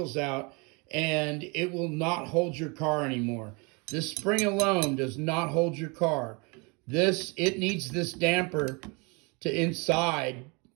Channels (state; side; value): quieter; left; 30.2 dB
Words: out and it will not hold your car anymore. This spring alone does not hold your car. It needs this damper to inside